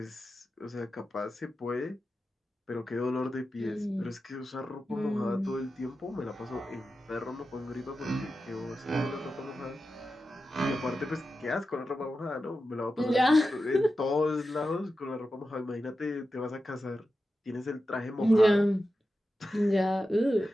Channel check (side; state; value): both; normal; correlation 0.91